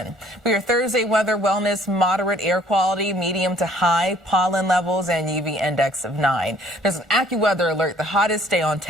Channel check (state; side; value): normal; both; correlation 0.58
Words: For your Thursday weather, wellness, moderate air quality, medium to high pollen levels, and UV index of 9. There's an AccuWeather alert. The hottest day on